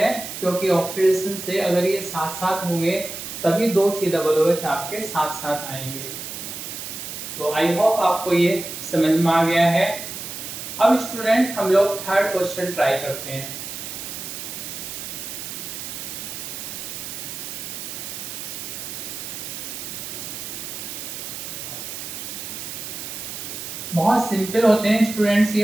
क्योंकि ऑक्सीडेशन से अगर ये साथ साथ होंगे तभी दो COOH आपके साथ साथ आएंगे। तो आई होप आपको ये समझ में आ गया है। अब स्टूडेंट हम लोग थर्ड क्वेश्चन ट्राई करते हैं। बहुत सिंपल होते हैं स्टूडेंट्स,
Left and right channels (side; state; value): right; noise; hiss, 8 dB below the sound